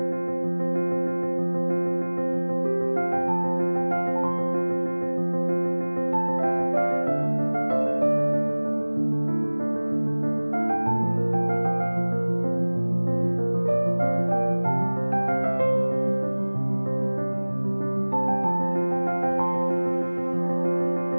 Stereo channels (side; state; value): both; inverted; correlation -1.00